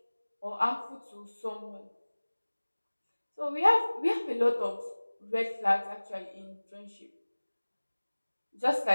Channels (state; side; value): inverted; both; correlation -1.00